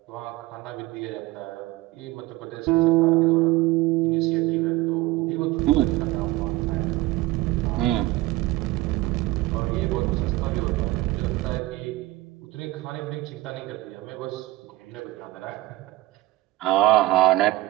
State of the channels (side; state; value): left; quieter; 18.3 dB